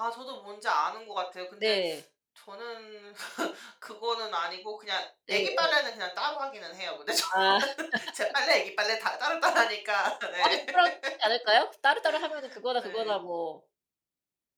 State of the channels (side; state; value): both; identical; correlation 1.00